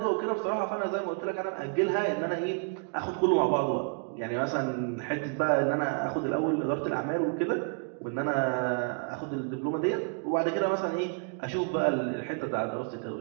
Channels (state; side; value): quieter; left; 38.7 dB